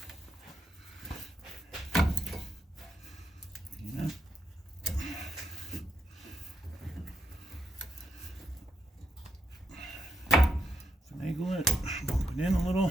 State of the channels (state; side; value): normal; both; correlation 0.79